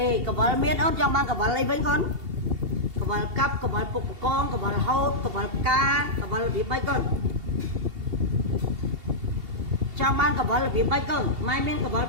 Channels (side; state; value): left; late; 2.7 ms